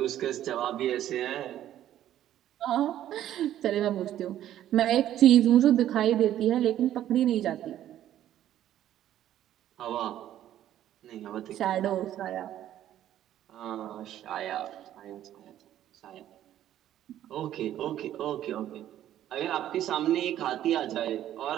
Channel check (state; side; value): quieter; left; 12.0 dB